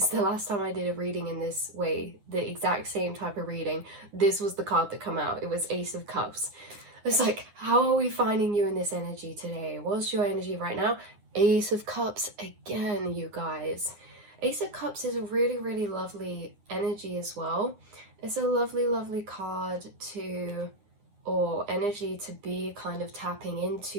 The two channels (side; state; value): left; late; 9.8 ms